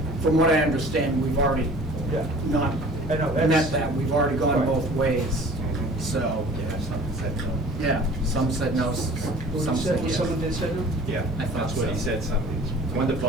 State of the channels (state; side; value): normal; both; correlation 0.46